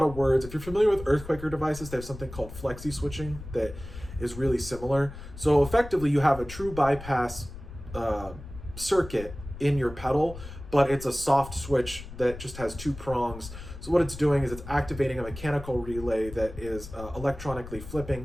of words. If you're familiar with Earthquaker devices, they have something called flexi switching that is really similar. So effectively, you have a true bypass circuit in your pedal, but it's a soft switch that just has 2 prongs. So what it's doing is it's activating a mechanical relay that is electronically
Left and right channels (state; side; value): noise; left; rumble, 13 dB below the sound